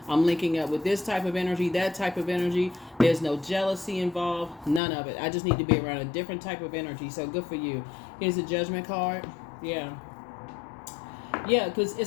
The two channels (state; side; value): drops out; right; at 4.8 s